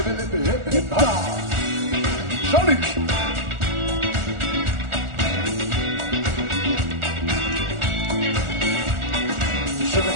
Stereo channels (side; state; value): left; late; 1.4 ms